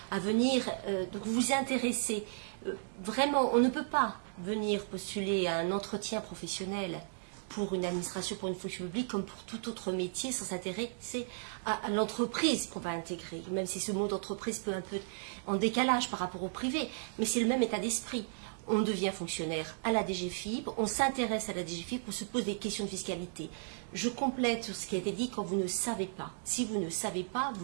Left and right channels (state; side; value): silent; left; digital silence